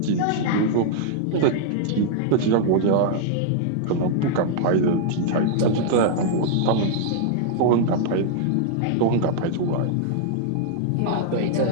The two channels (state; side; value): different; both; correlation -0.01